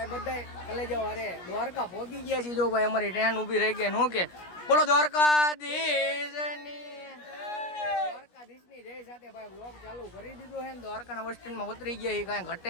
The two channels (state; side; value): late; right; 17 ms